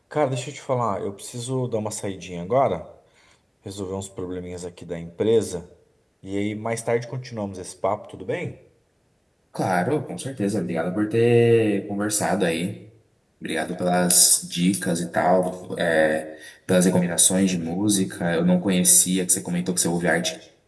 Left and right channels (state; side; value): identical; both; correlation 1.00